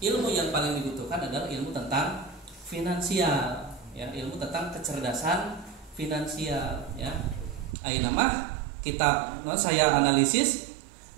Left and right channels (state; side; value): drops out; left; at 7.8 s